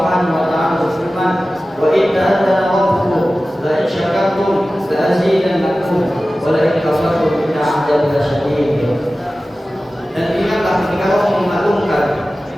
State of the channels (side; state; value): both; normal; correlation 0.96